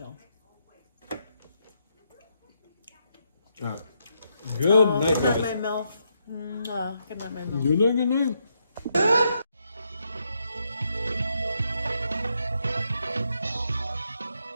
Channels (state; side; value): inverted; both; correlation -0.79